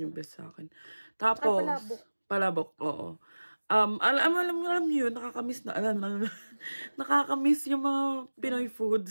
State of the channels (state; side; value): inverted; both; correlation -1.00